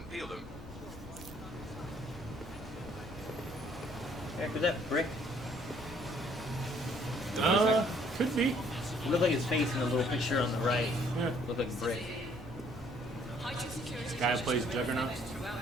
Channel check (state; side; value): normal; both; correlation 0.62